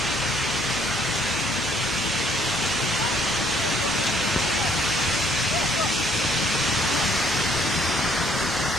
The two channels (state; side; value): normal; both; correlation 0.64